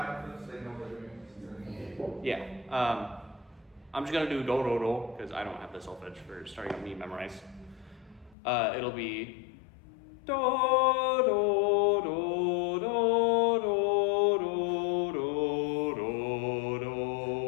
so they know what they're doing? Yeah. I'm just gonna do do do do because I don't have the solfege for starting with me memorized. It'll be do do do do do do do do do.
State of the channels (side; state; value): right; drops out; at 8.3 s